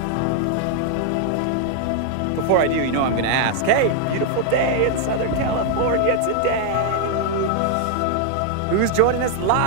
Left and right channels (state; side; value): different; both; correlation 0.00